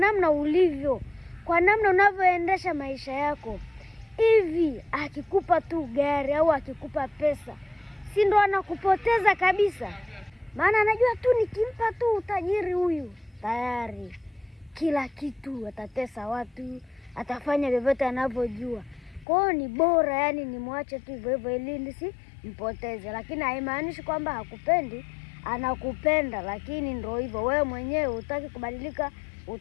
ulivyo, kwa namna unavyoendesha maisha yako. Hivi akikupa tu gari au akikupa pesa, si ndo anakupoteza kabisa? Maana anajua tu nikimpa tu utajiri huyu, tayari kila kitu, atatesa watu, atafanya vyovyote anavyojua. Kwa hiyo ni bora yani nimwache tu hivyo hivyo ili nisimpoteze. Lakini haimaanishi kwamba hakupendi, anakupenda, lakini ndio hivyo, wewe mwenyewe hutaki kubadilika,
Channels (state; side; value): drops out; right; at 19.2 s